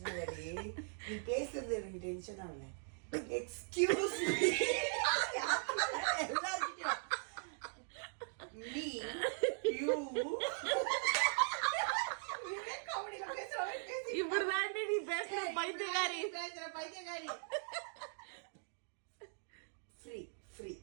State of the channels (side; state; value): left; silent; digital silence